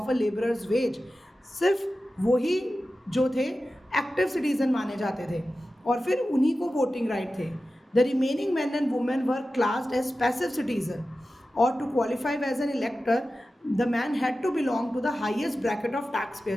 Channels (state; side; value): normal; both; correlation 0.94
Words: a labourers wage, सिर्फ वही जो थे एक्टिव सिटीजन माने जाते थे, और फिर उन्हीं को वोटिंग राइट थे. The remaining men and women were classed as passive citizen, or to qualify as an elector, the man had to belong to the highest bracket of taxpayer.